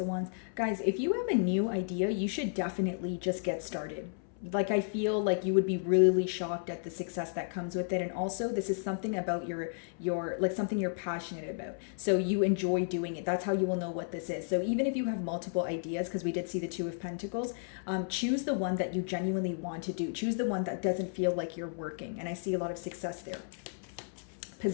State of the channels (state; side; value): silent; right; 56 dB below the other